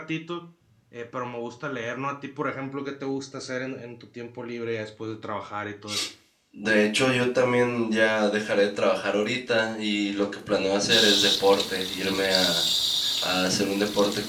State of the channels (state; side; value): identical; both; correlation 1.00